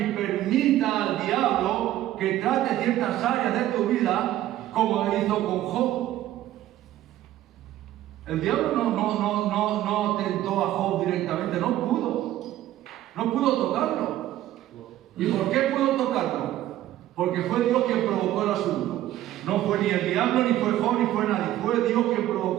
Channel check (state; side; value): quieter; left; 13.7 dB